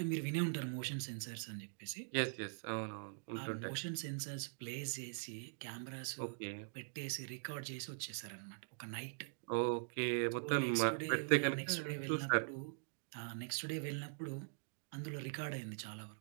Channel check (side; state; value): left; silent; digital silence